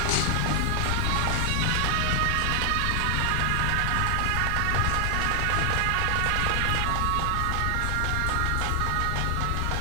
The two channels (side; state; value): both; different; correlation 0.00